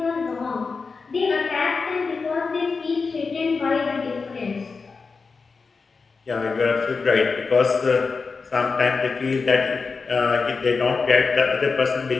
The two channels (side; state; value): right; quieter; 4.6 dB